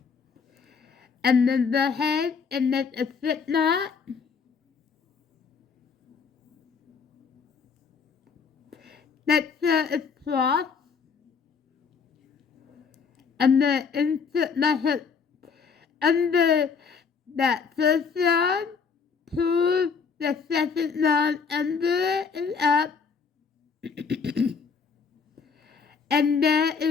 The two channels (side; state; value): right; quieter; 5.7 dB